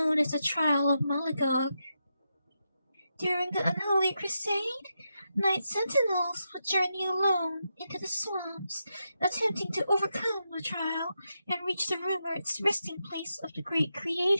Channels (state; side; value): inverted; both; correlation -0.86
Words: as the Trial of Malagog. During the Unholy Crusade, night sentinels would journey alone into the swamps, attempting to overcome the trial and reach the rumored resting place of the great